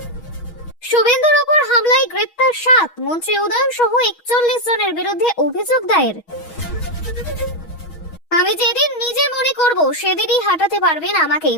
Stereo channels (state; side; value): late; right; 6.2 ms